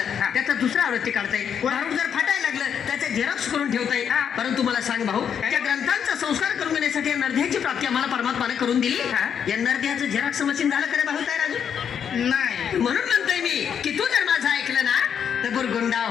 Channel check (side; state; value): right; quieter; 7.9 dB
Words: त्याचा दुसरा आवृत्ती काढता येईल. भारूड जर फाटायला लागलं, त्याचे झेरॉक्स करून ठेवता येईल. परंतु मला सांग भाऊ, त्या ग्रंथांचा संस्कार करून घेण्यासाठी या नरध्याची प्राप्ती आम्हाला परमात्माने करून दिली. या नरध्याचं झेरॉक्स मशीन झालं खरं भाऊ तयार अजून नाही. म्हणून म्हणतोय मी की तू जर माझं ऐकलं ना तर बुरगुंडा